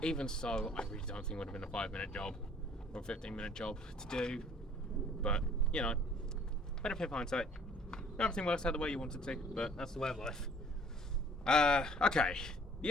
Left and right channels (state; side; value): normal; both; correlation 0.55